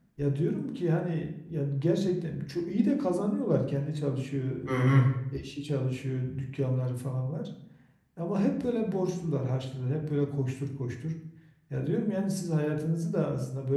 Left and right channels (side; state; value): both; identical; correlation 1.00